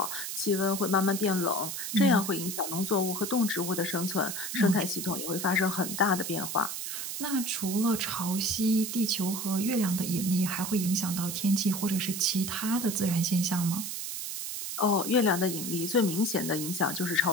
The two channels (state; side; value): noise; right; hiss, 5 dB below the sound